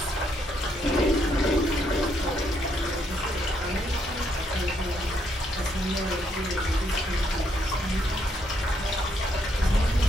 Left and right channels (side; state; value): both; normal; correlation 0.74